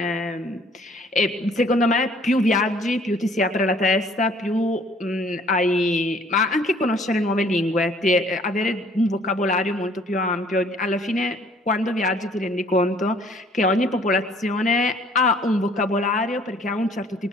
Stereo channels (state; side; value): normal; both; correlation 0.58